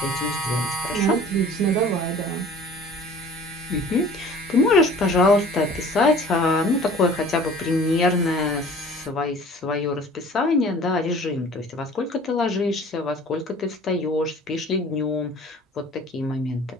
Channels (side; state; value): both; normal; correlation 0.47